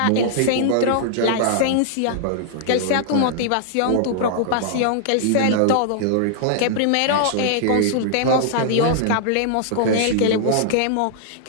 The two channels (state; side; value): different; both; correlation -0.01